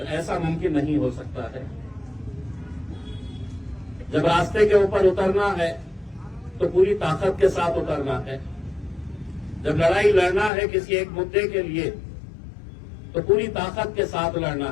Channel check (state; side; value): drops out; right; at 10.5 s